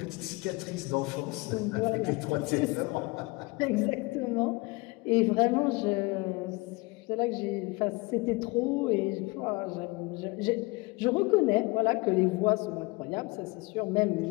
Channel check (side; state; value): right; quieter; 24.9 dB